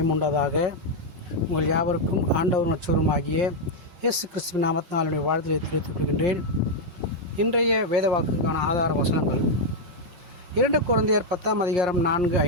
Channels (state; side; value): late; left; 5.7 ms